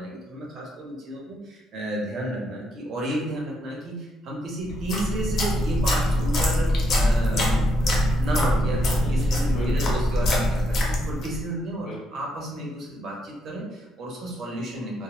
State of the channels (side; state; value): both; normal; correlation 0.78